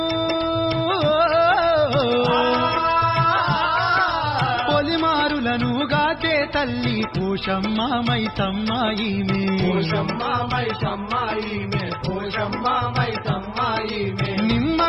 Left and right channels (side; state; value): both; identical; correlation 1.00